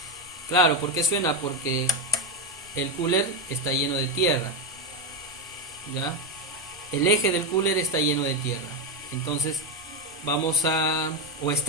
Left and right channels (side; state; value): both; normal; correlation 0.10